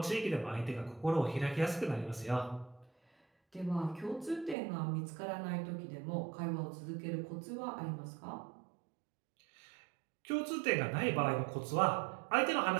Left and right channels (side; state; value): left; drops out; at 4.5 s